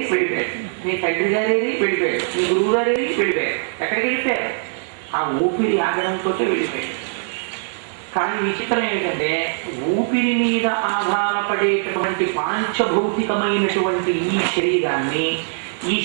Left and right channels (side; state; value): left; silent; digital silence